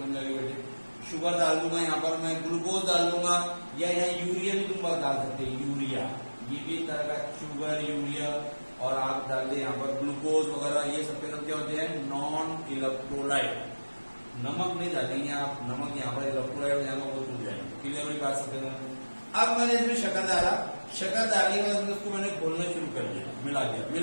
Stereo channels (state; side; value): inverted; both; correlation -1.00